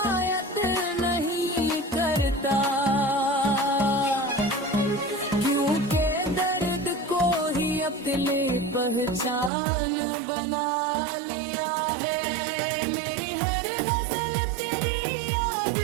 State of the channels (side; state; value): left; drops out; at 9.5 s